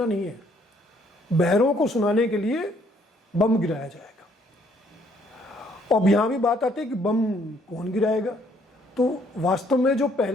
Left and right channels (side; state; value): both; normal; correlation 0.66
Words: नहीं है, बहरों को सुनाने के लिए बम गिराया जाएगा। अब यहाँ भी बात आती है कि बम कौन गिराएगा। तो वास्तव में जो